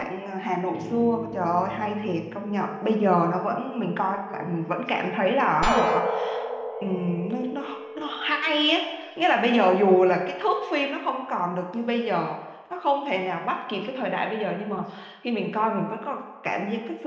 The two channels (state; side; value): identical; both; correlation 1.00